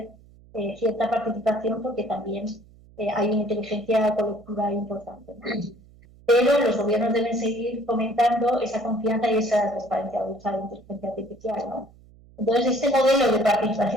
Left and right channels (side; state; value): right; noise; hum, 25 dB below the sound